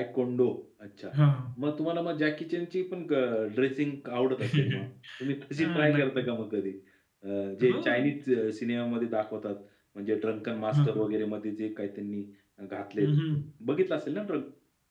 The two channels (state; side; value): identical; both; correlation 1.00